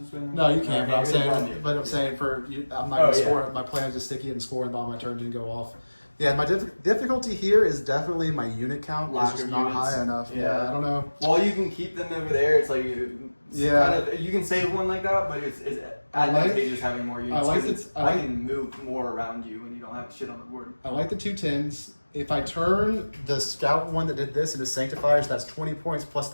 way? No, you can't. No, but I'm saying for you, I'm not gonna score it. My plan is to sticky it and score, and on my turn didn't go off. Yeah, my difficulty here is definitely my unit count is just not high enough. Yeah, I don't know. Well, you can keep them over there. It's like kind of, you can save one like that, but it's advantageous having more units. I can move more around you when you don't have shit on the board. I like the 2 10s. If I turn the scout one that did this into sanctifiers, that's 20 points plus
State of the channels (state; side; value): inverted; both; correlation -1.00